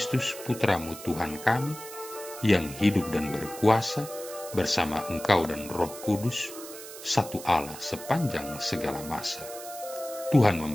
Putramu Tuhan kami, yang hidup dan berkuasa bersama Engkau dan Roh Kudus, satu Allah sepanjang segala masa. Tuhan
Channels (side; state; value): right; noise; hiss, 13 dB below the sound